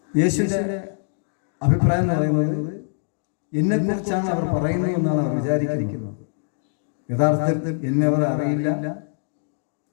യേശുവിൻ്റെ അഭിപ്രായം എന്ന് പറയുന്നത് എന്നെക്കുറിച്ചാണ് അവർ പറയുന്നത് എന്നാണ് അവർ വിചാരിക്കുന്നത്. യഥാർത്ഥത്തിൽ എന്നെ അവർ അറിയില്ല,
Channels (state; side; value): silent; right; digital silence